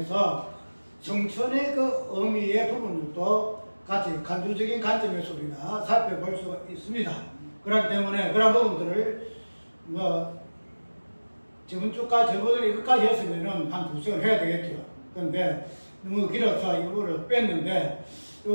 성천의 그 의미의 부분들도 같이 간주적인 관점에서 우리가 살펴볼 수가 있습니다. 그렇기 때문에 그런 부분들을 저번 주까지 저번에 이것까지 했으면은 한 2시간 해야 되겠죠. 그런데 너무 길어서 이 부분을 뺐는데, 이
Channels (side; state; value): both; inverted; correlation -1.00